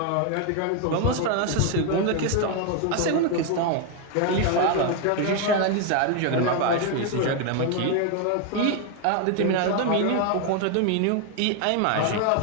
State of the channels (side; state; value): both; different; correlation 0.01